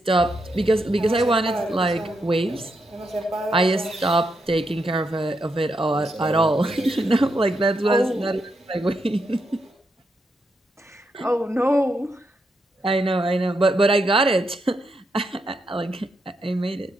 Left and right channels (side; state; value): both; normal; correlation 0.82